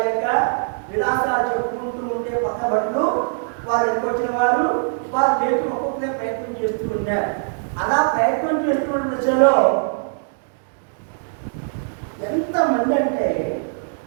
యొక్క విలాసాలు చెప్పుకుంటూ ఉంటే పక్క బట్టలు వారు ఎదుకొచ్చిన వారు వారు లేచి ఒక్కొక్కరే ప్రయత్నం చేస్తూ ఉన్నారు. అలా ప్రయత్నం చేస్తున్న దశలో ఎంతమంది అంటే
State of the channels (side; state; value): left; silent; digital silence